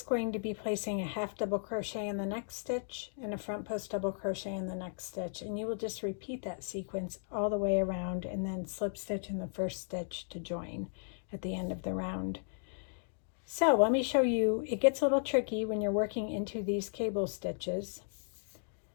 going to be placing a half double crochet in the next stitch and a front post double crochet in the next stitch, and you will just repeat that sequence all the way around and then slip stitch in the first stitch to join at the end of the round. So let me show you, it gets a little tricky when you're working into these cable stitches.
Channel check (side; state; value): right; silent; digital silence